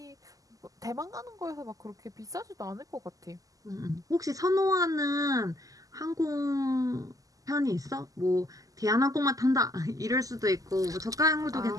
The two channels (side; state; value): left; late; 0.17 ms